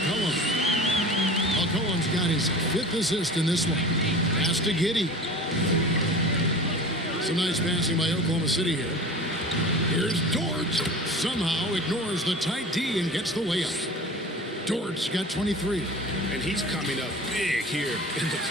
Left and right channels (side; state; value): both; normal; correlation 0.37